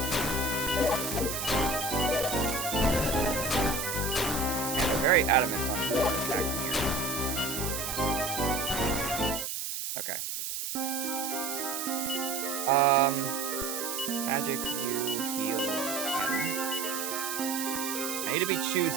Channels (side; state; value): right; noise; hiss, 4 dB below the sound